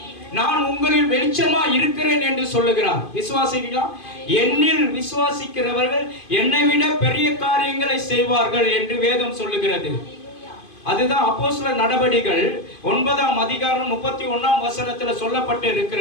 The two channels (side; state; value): right; late; 2.5 ms